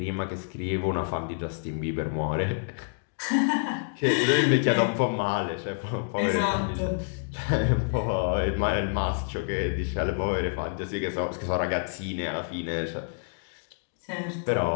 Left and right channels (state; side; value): silent; right; digital silence